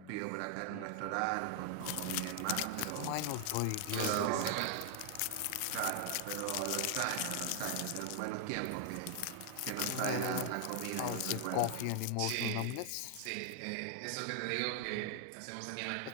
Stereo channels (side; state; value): both; different; correlation 0.00